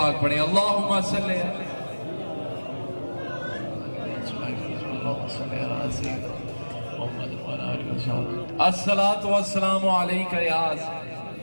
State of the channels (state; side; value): inverted; both; correlation -1.00